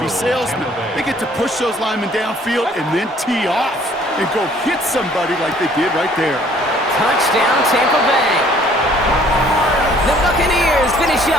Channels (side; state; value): both; normal; correlation 0.58